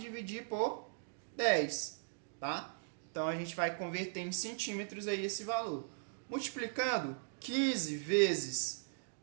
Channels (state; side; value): silent; left; digital silence